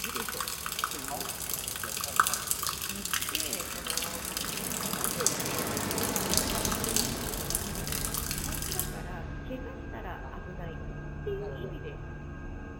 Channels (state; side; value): identical; both; correlation 1.00